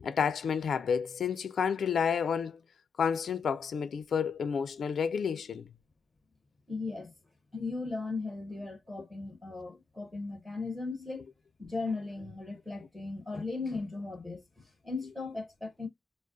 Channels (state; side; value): quieter; right; 5.6 dB